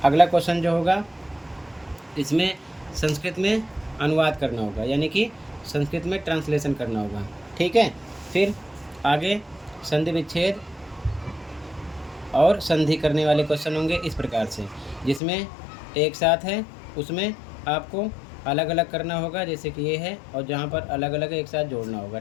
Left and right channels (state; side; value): drops out; right; at 15.2 s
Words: अगला क्वेश्चन जो होगा, इसमें संस्कृत में अनुवाद करना होगा, यानी कि संस्कृत में ट्रांसलेशन करना होगा, ठीक है। फिर आगे संधि विच्छेद और संधि करने वाले क्वेश्चन होंगे इस प्रकार से, जिसमें एक साथ है उसमें आपको अलग अलग करना होगा, जैसे कि ये है, और जहाँ पर अलग अलग है एक साथ जोड़ना होगा।